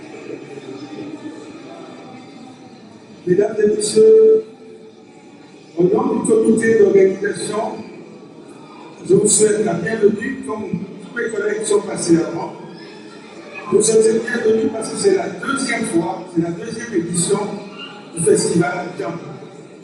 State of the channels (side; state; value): both; identical; correlation 1.00